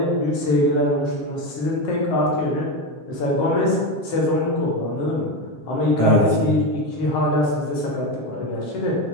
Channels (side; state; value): right; late; 7.5 ms